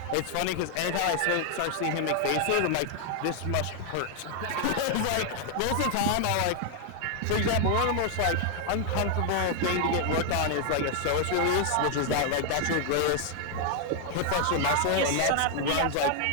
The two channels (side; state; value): both; different; correlation 0.00